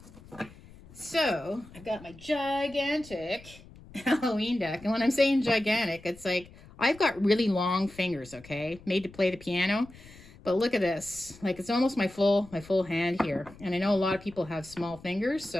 So I've got my gigantic Halloween deck. And when I'm saying gigantic, it's like I've got really long fingers, okay? Made to play the piano. But look at this. Like it's almost my full hand here. And I know a lot of people have small fingers,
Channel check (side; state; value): left; noise; rumble, 21 dB below the sound